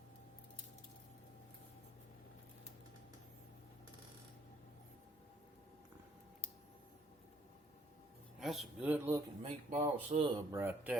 That's a good looking meatball sub right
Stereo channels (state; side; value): normal; both; correlation 0.64